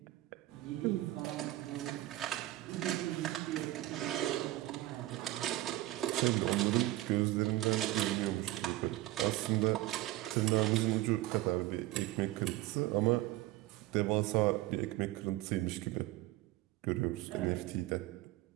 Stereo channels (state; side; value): quieter; left; 16.8 dB